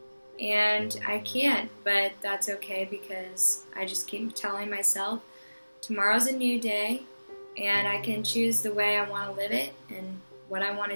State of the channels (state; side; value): inverted; both; correlation -1.00